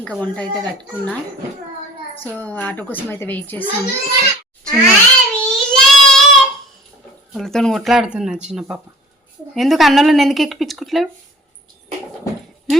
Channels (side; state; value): both; normal; correlation 0.48